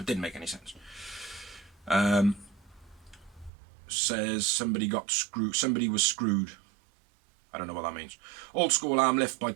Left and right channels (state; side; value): drops out; left; at 3.5 s